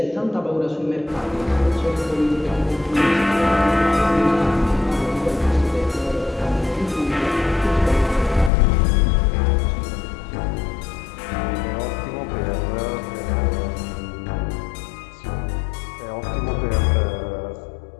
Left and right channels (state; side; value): drops out; right; at 8.5 s